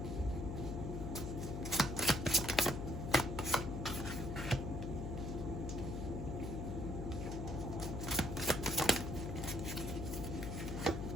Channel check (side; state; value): left; noise; hum, 4 dB below the sound